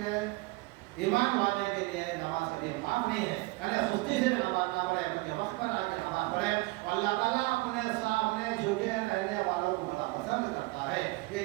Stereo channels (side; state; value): left; quieter; 23.2 dB